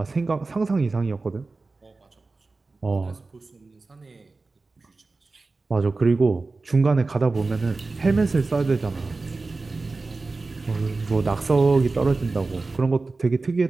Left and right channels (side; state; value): left; quieter; 3.6 dB